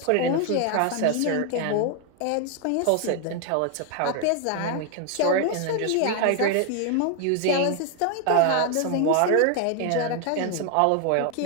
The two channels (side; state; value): both; different; correlation 0.00